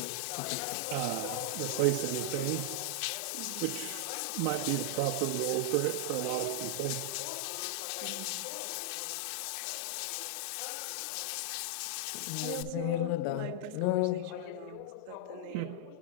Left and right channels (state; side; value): different; both; correlation -0.01